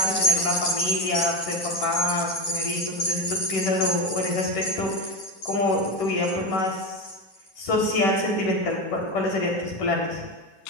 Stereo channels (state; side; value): late; right; 10 ms